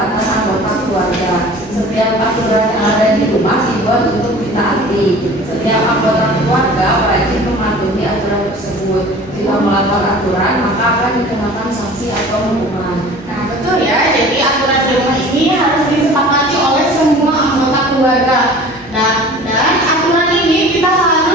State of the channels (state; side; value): normal; both; correlation 0.43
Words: anggota keluarga. Setiap aturan yang ada di rumah dibuat untuk ditaati. Setiap anggota keluarga wajib mematuhi aturan tersebut. Jika melanggar aturan, maka akan dikenakan sanksi atau hukuman. Nah,